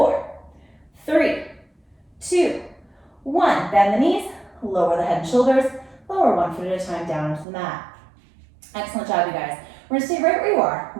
3, 2, 1. Bend the knees. Lower the head and shoulders. Lower 1 foot at a time down into the mat. Excellent job, you guys. We're going to stay right where you are.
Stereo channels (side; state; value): left; drops out; at 7.5 s